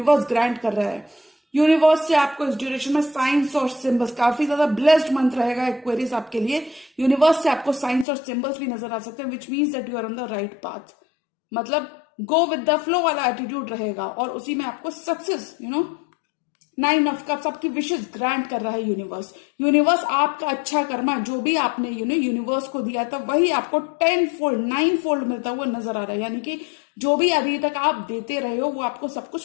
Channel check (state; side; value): drops out; right; at 8.1 s